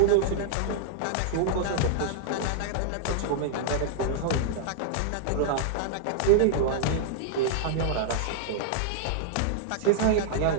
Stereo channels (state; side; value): different; both; correlation -0.01